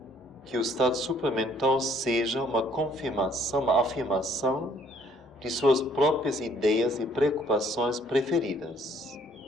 que o estado supramental seja uma confirmação, uma afirmação de suas próprias ideias e preocupações preferidas.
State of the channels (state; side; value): normal; both; correlation 0.62